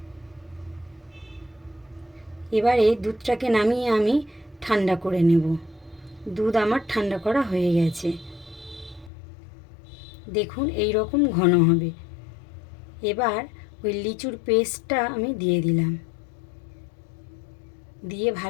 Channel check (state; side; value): drops out; right; at 9.1 s